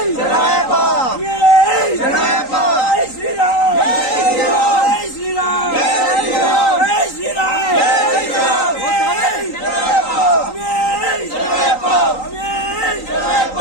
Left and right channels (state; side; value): late; right; 3.9 ms